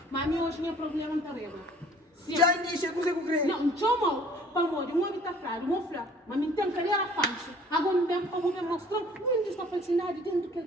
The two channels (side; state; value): both; normal; correlation 0.53